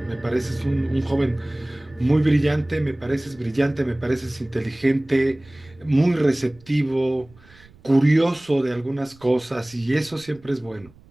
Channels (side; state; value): right; noise; rumble, 26 dB below the sound